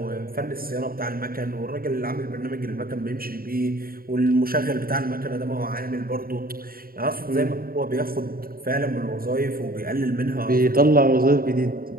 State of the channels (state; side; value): late; left; 0.43 ms